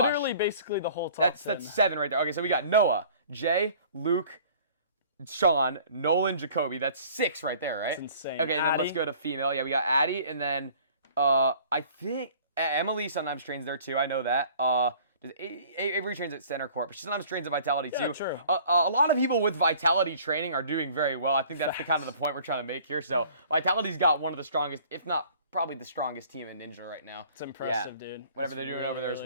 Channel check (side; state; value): both; inverted; correlation -0.51